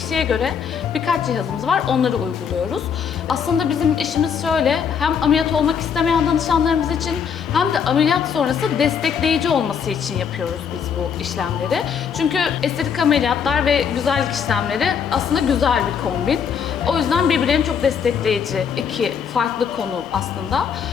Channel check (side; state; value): right; quieter; 7.1 dB